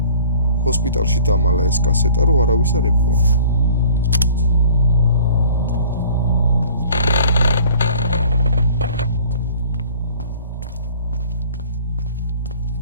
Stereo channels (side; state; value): both; inverted; correlation -0.50